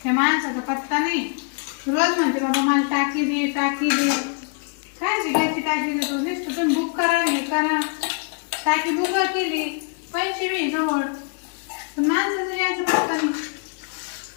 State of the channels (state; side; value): quieter; right; 36.3 dB